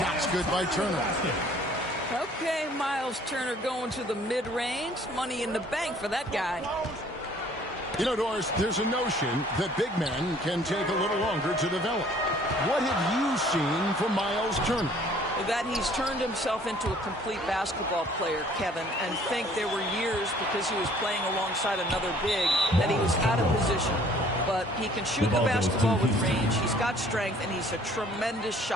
good by Turner. Okay, Miles Turner going to the mid-range. Money in the bank for that guy. You know, Doris, there's a notion that big men can take a little longer to develop. What have you seen from Miles Turner? That he's turned himself into a complete basketball player, Kevin, and think there were years because he was playing alongside another big that he was out of position. But he can shoot the basketball with range, he's got strength, and he's a tremendous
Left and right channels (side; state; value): both; normal; correlation 0.56